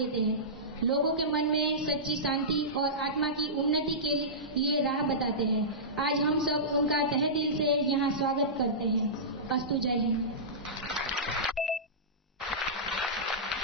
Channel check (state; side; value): normal; both; correlation -0.18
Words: हैं। लोगों के मन में सच्ची शांति और आत्मा की उन्नति के लिए राह बताते हैं। आज हम सब उनका तहे दिल से यहाँ स्वागत करते हैं। अस्तु। जय हिंद।